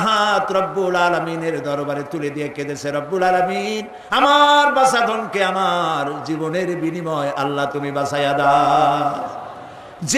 হাত রব্বুল আলামিনের দরবারে তুলে দিয়ে কেঁদেছে, রব্বুল আলামিন, আমার বাঁচাধনকে আমার জীবনের বিনিময় আল্লাহ তুমি বাঁচাইয়া দাও।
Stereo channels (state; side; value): identical; both; correlation 1.00